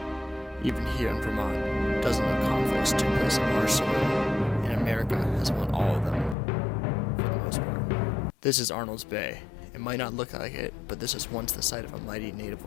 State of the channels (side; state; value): right; drops out; at 6.4 s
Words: Even here in Vermont, dozens of conflicts took place on our soil, and America has won all of them, for the most part. This is Arnold's Bay. It might not look like it, but this was once the site of a mighty